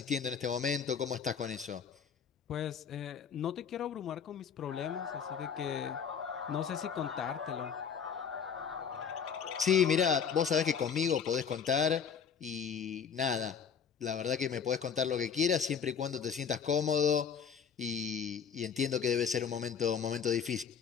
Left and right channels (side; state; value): right; quieter; 7.0 dB